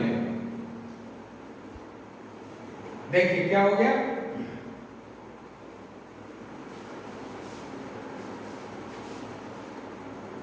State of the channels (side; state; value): both; identical; correlation 1.00